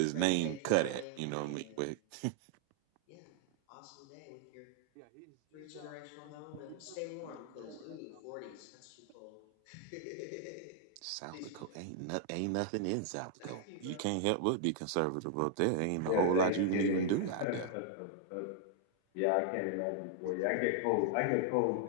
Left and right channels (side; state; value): both; different; correlation -0.01